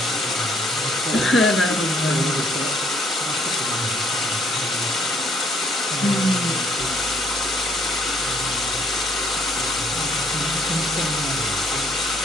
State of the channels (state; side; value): normal; both; correlation 0.65